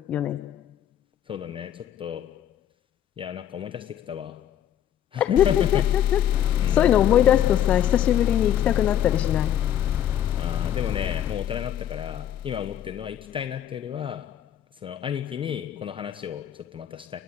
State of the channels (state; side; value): quieter; right; 10.6 dB